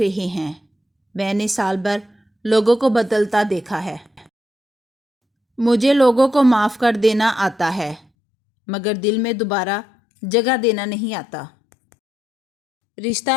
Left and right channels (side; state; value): right; drops out; at 8.0 s